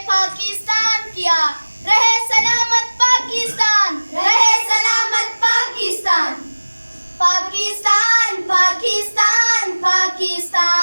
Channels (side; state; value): both; inverted; correlation -1.00